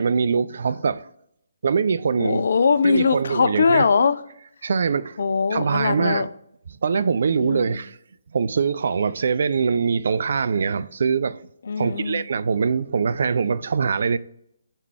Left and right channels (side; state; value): both; inverted; correlation -0.81